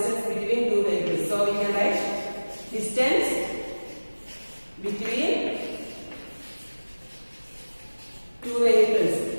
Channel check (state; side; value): inverted; both; correlation -1.00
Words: between two vehicles. So we can write distance between two vehicles